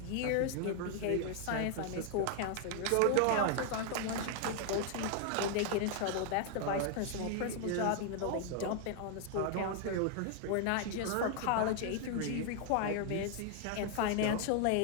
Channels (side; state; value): both; different; correlation 0.00